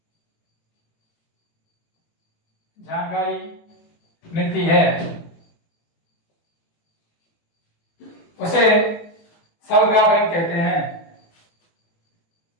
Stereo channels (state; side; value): late; right; 18 ms